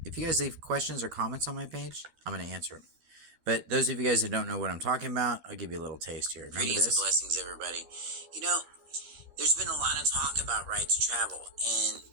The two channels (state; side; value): late; left; 13 ms